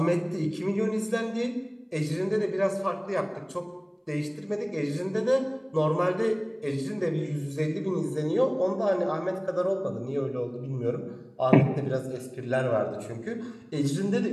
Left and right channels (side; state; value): both; identical; correlation 1.00